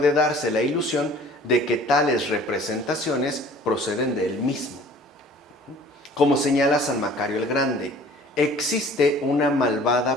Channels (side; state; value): both; normal; correlation 0.49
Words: darse la ilusión de que tales representaciones proceden de él mismo. Como señala San Macario el Grande, existe una